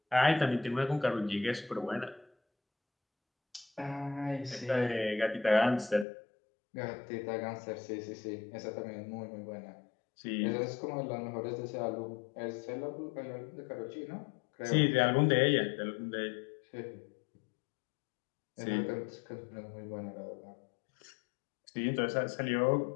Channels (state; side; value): drops out; right; at 6.1 s